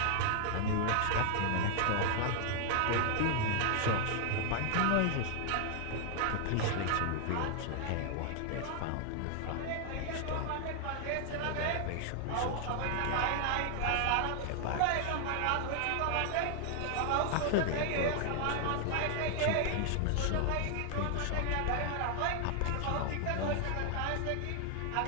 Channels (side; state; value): both; different; correlation 0.00